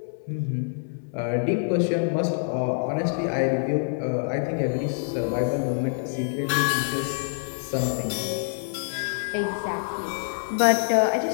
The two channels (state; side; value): silent; right; digital silence